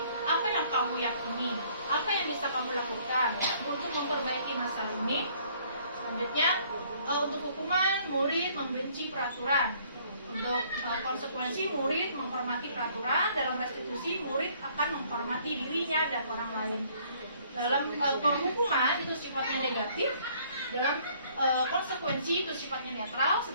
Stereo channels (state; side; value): inverted; both; correlation -0.61